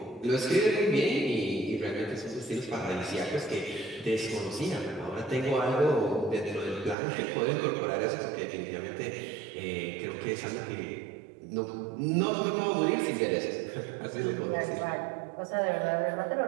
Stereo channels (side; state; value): left; drops out; at 7.0 s